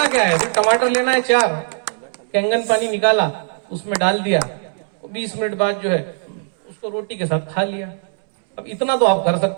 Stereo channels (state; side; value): silent; left; 66 dB below the other